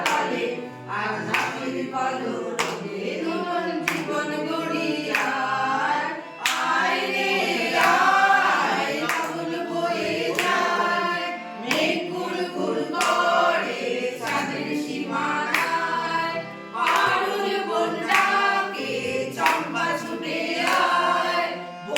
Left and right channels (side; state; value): both; identical; correlation 1.00